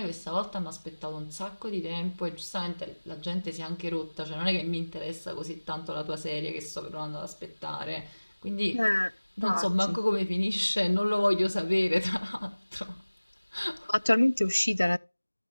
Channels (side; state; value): both; inverted; correlation -1.00